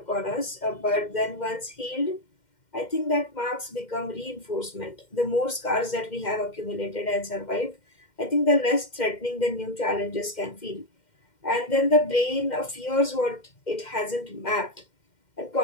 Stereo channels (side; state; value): right; late; 2.1 ms